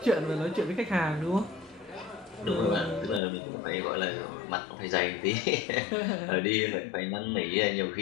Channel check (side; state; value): right; drops out; at 3.2 s